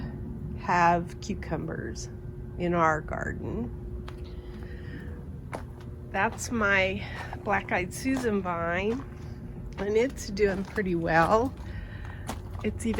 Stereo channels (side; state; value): both; identical; correlation 1.00